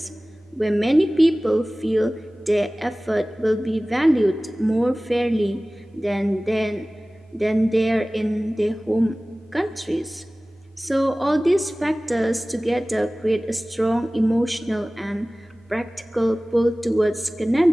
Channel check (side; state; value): both; normal; correlation 0.98